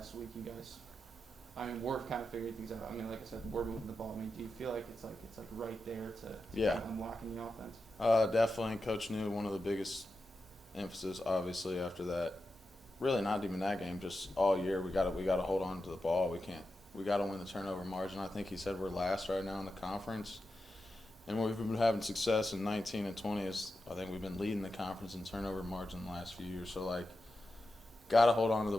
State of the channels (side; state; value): both; normal; correlation 0.90